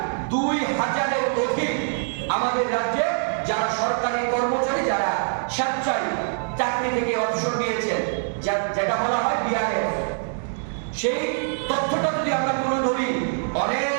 2,000-এর অধিক আমাদের রাজ্যে যারা সরকারি কর্মচারী, যারা স্বেচ্ছায় চাকরি থেকে অবসর নিয়েছেন, যেটা বলা হয় বিআরএফ, সেই তথ্যটা যদি আমরা তুলে ধরি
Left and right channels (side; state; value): left; silent; digital silence